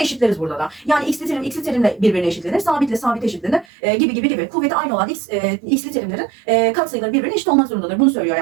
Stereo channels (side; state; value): left; drops out; at 3.7 s